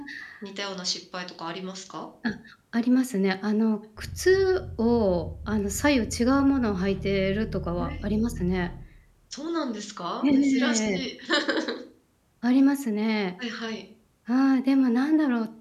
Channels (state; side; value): identical; both; correlation 1.00